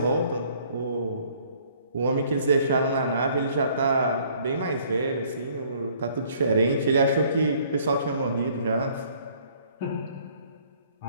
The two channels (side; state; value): both; inverted; correlation -0.60